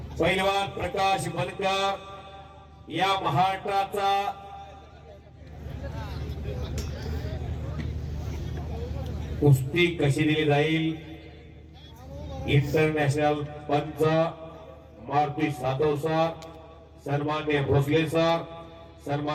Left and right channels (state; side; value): identical; both; correlation 1.00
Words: पैलवान प्रकाश बनकर या महाराष्ट्राचा कुस्ती कशी दिली जाईल इंटरनॅशनल पंच मारुती सातव सर, सन्मान्य भोसले सर,